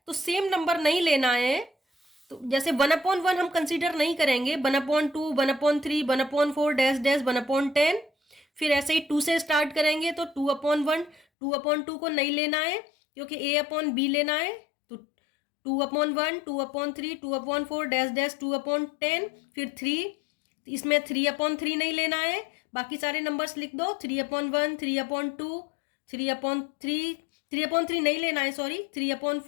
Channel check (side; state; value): right; drops out; at 11.2 s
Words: तो सेम नंबर नहीं लेना है, तो जैसे 1/1 हम कंसीडर नहीं करेंगे, 1/2, 1/3, 1/4 डैश डैश 1/10, फिर ऐसे ही 2 से स्टार्ट करेंगे तो 2/1, 2/2 को नहीं लेना है क्योंकि a अपॉन बी लेना है, तो 2/1, 2/3, 2/4 डैश डैश 2/10, फिर 3, इसमें 3/3 नहीं लेना है, बाकी सारे नंबर्स लिख दो, 3/1, 3/2, 3/3, 3/3 नहीं लेना है, सॉरी